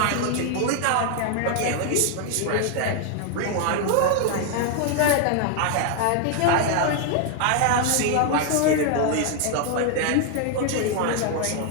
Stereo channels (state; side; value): different; both; correlation 0.00